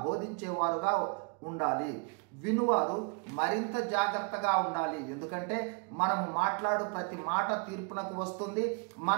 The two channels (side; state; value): left; quieter; 35.6 dB